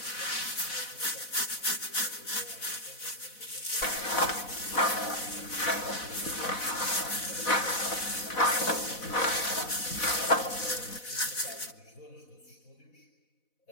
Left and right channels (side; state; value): right; late; 4.1 ms